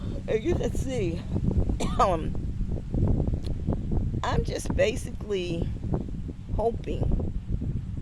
you can see, I'm just basically hoping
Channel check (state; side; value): identical; both; correlation 1.00